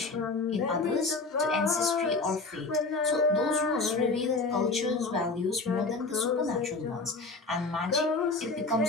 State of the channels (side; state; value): right; quieter; 3.7 dB